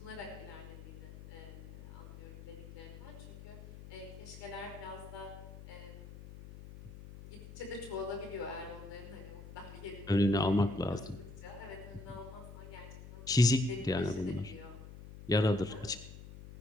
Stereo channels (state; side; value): noise; left; hum, 14 dB below the sound